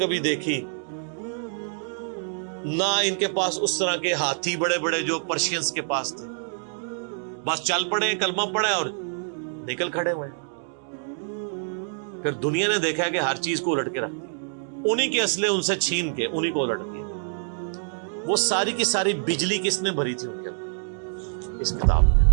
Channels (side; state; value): left; silent; digital silence